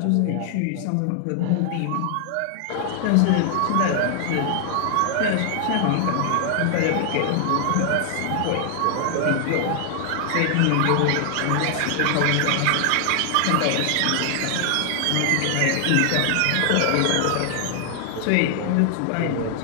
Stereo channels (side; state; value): both; different; correlation 0.00